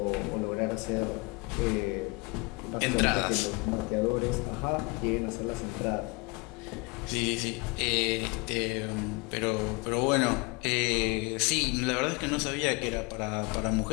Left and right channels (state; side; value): quieter; right; 27.7 dB